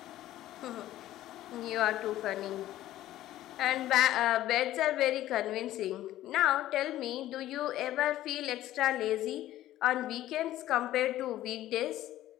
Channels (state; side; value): quieter; right; 14.1 dB